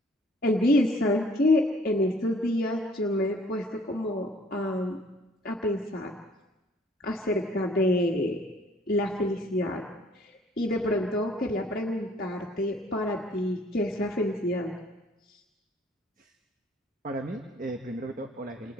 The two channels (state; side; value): normal; both; correlation 0.57